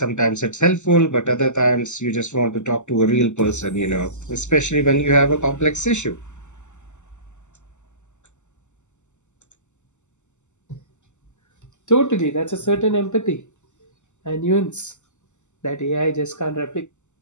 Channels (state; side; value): late; right; 0.84 ms